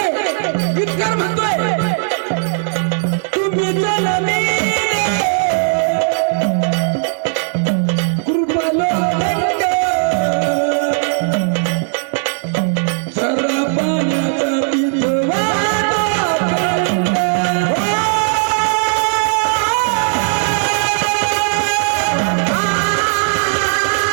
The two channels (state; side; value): silent; left; 68 dB below the other